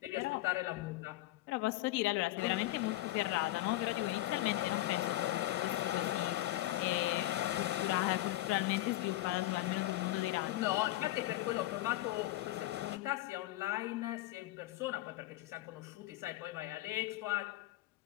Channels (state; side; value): quieter; right; 16.5 dB